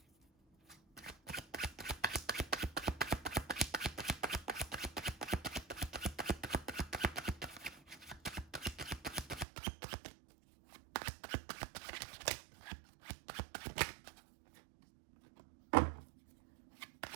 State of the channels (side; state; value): left; drops out; at 9.5 s